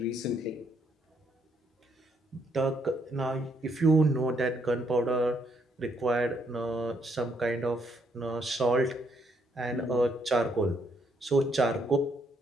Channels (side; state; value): both; normal; correlation 0.73